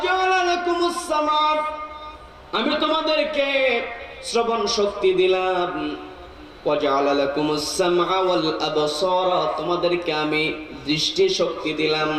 লাকুমুস সামা, আমি তোমাদেরকে শ্রবণ শক্তি দিলাম। ওয়াজআলা লাকুমুস সামআ ওয়াল আবসারা, তোমাদেরকে আমি দৃষ্টি শক্তি দিলাম।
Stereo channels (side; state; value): both; identical; correlation 1.00